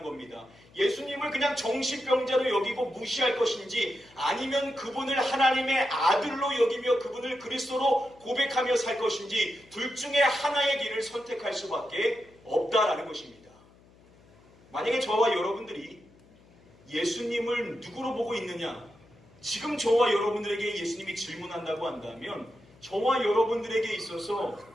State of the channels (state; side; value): noise; left; hum, 27 dB below the sound